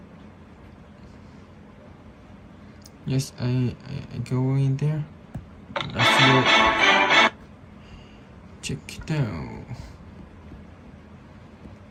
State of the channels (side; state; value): both; identical; correlation 1.00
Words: Yes, I go in there. Let's go. Check it out.